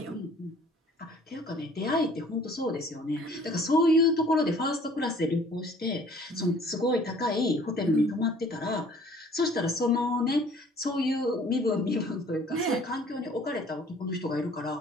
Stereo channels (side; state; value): both; normal; correlation 0.54